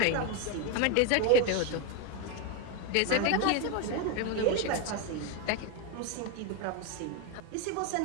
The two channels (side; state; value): both; different; correlation 0.02